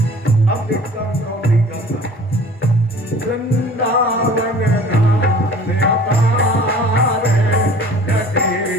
अब देखता हूँ कौन नहीं करता। वृंदावन धाम अपार रटे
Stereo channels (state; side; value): normal; both; correlation 0.46